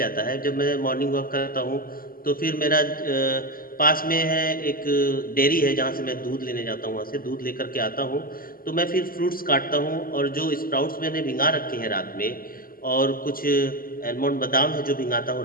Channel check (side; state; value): right; late; 0.42 ms